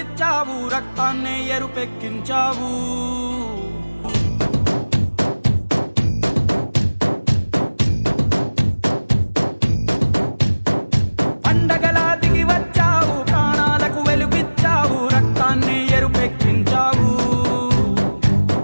రక్తాన్నే ఎరుపెక్కించావు. పండగలా దిగి వచ్చావు, ప్రాణాలకు వెలుగిచ్చావు, రక్తాన్నే ఎరుపెక్కించావు.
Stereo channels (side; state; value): both; inverted; correlation -1.00